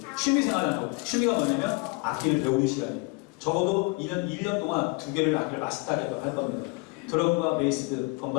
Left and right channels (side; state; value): right; quieter; 29.1 dB